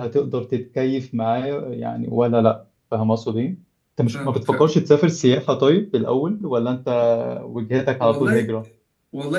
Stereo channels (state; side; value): identical; both; correlation 1.00